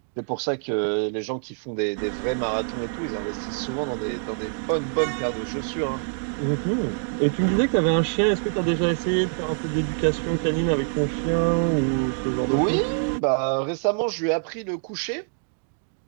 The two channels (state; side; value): silent; left; digital silence